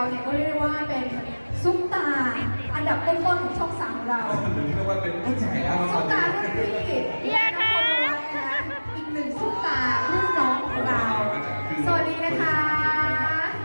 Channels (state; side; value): inverted; both; correlation -1.00